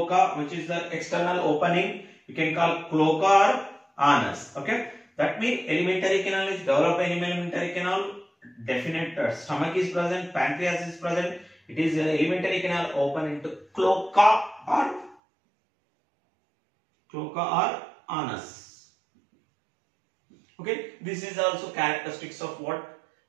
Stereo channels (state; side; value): drops out; left; at 15.2 s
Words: which is the external opening. We can call cloaca or anus. Okay, that means alimentary canal is developed in alimentary canal. Definite stomach is present, pancreas is present. It is alimentary canal open into cloaca or anus. Okay, this is also characteristics of what,